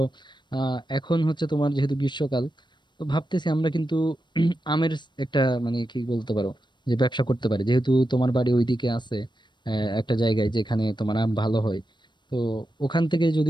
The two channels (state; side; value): late; right; 0.22 ms